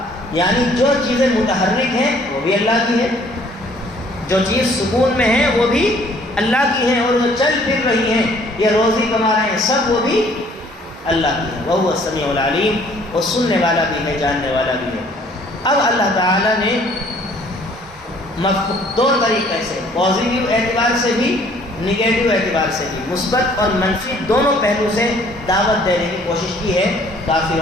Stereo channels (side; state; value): both; normal; correlation 0.59